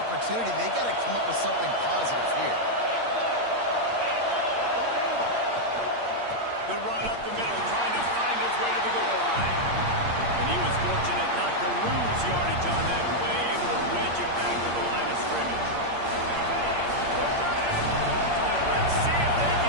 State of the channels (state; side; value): late; left; 8.6 ms